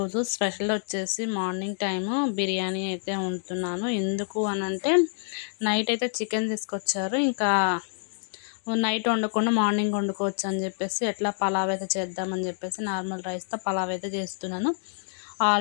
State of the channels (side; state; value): right; silent; digital silence